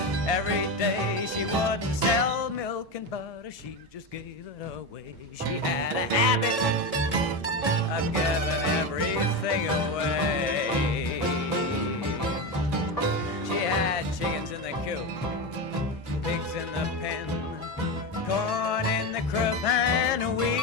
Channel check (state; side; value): normal; both; correlation 0.17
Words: every day. She wouldn't sell milk and butter, she just gave it away. She had a habit of giving everything away. She had chickens in the coop, pigs in the pen, corn in the crib and